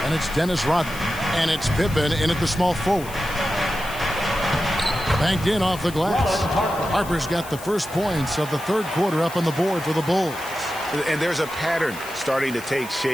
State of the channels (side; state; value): left; noise; hiss, 15 dB below the sound